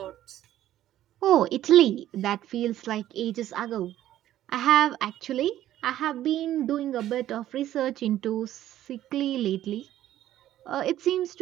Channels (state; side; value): quieter; left; 12.9 dB